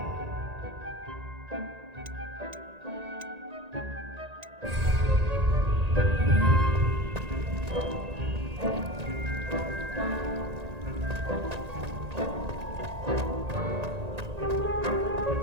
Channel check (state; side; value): late; left; 1.9 ms